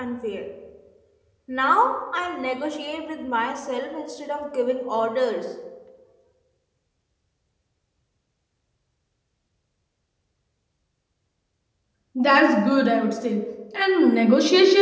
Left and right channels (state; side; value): identical; both; correlation 1.00